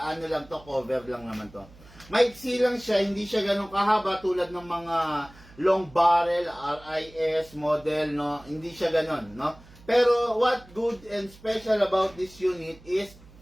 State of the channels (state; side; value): noise; right; hum, 23 dB below the sound